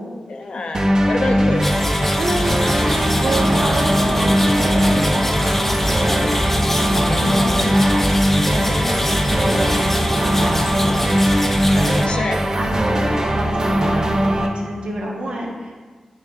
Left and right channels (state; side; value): normal; both; correlation 0.94